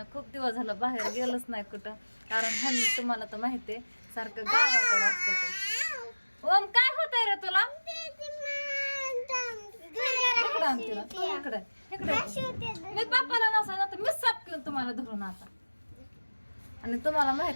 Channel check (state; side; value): inverted; both; correlation -1.00